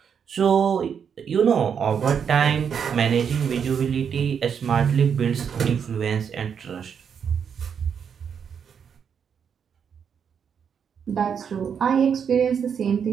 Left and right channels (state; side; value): quieter; left; 7.3 dB